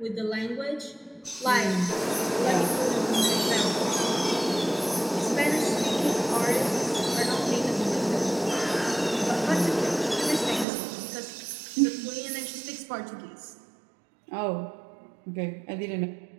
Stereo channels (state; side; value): drops out; left; at 10.7 s